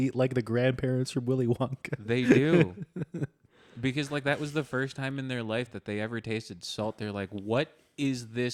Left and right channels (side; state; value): both; identical; correlation 1.00